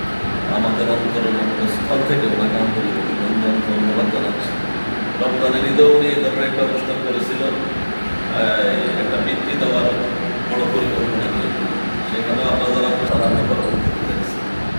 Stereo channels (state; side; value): inverted; both; correlation -1.00